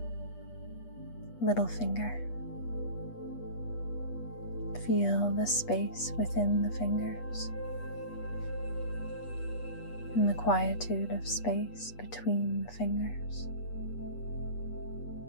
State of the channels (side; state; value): right; late; 8.3 ms